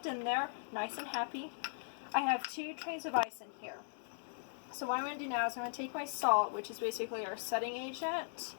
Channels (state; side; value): silent; right; digital silence